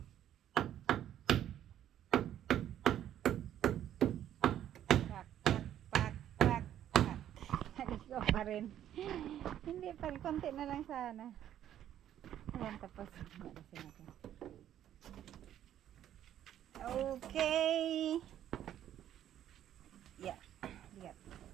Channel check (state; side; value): quieter; left; 11.1 dB